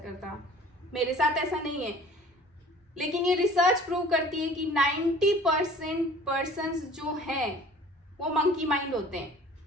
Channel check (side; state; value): both; normal; correlation 0.48